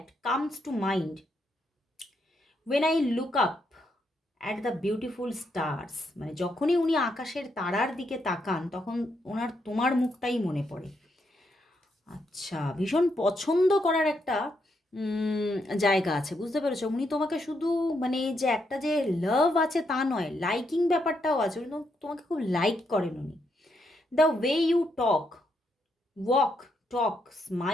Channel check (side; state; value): both; normal; correlation 0.78